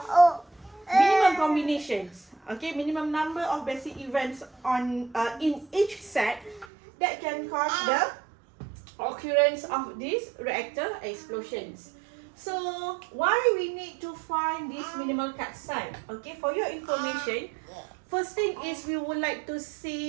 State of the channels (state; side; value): drops out; left; at 6.7 s